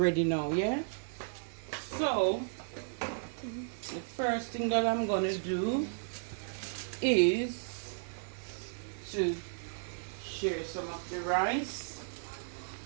now, yeah? So, the first thing that I'm going to do is to share some of the rice.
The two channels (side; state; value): left; silent; digital silence